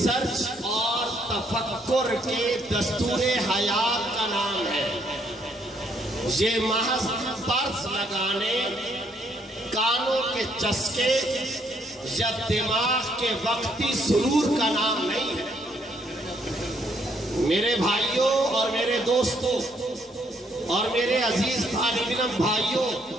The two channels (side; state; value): both; normal; correlation 0.70